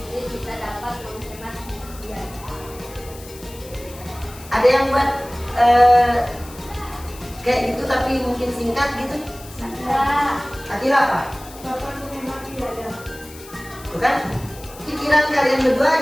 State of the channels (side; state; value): left; noise; hiss, 18 dB below the sound